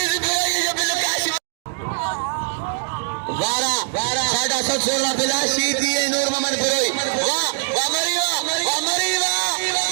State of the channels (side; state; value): left; silent; digital silence